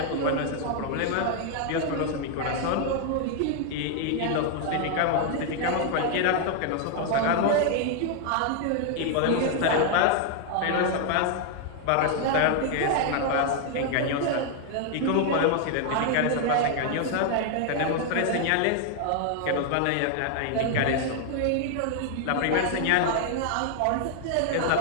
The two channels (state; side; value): different; both; correlation 0.00